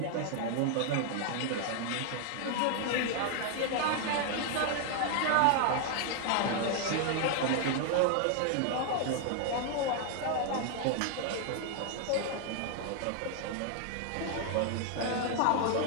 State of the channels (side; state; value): both; different; correlation 0.00